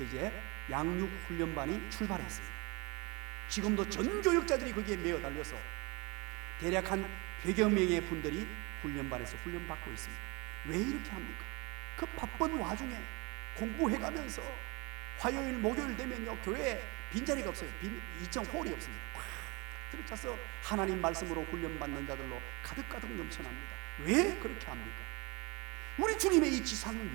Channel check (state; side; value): quieter; left; 27.7 dB